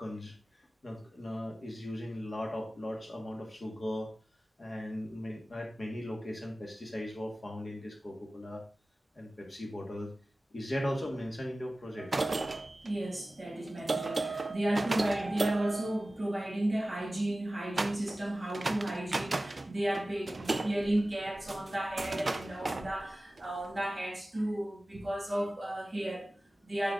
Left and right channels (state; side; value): normal; both; correlation 0.96